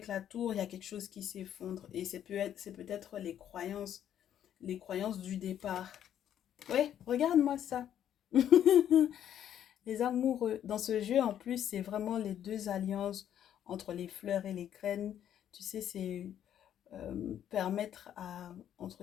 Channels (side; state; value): right; quieter; 10.2 dB